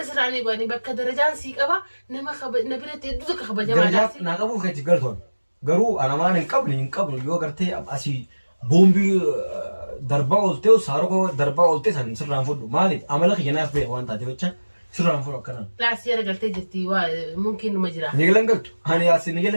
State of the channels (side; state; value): both; inverted; correlation -1.00